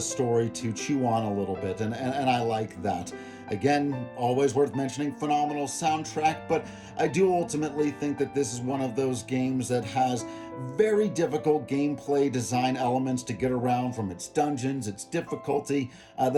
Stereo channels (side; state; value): both; identical; correlation 1.00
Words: story to chew on a little bit, and I like that. Again, always worth mentioning, phenomenal soundtrack, but I do ultimately think that this is one of those games that has very difficult gameplay design elements to get around, from its dungeons, its difficulty,